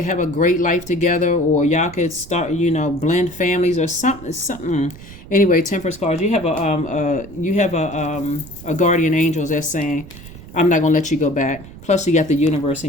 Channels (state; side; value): noise; right; rumble, 17 dB below the sound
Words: have a great life together, or y'all could start, blend families or something. Anyway, Temperance cards, you have a guardian angel that's saying, I'm not going to let you go back. Plus you got the universe